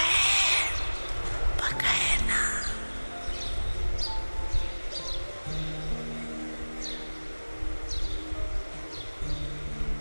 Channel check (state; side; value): inverted; both; correlation -1.00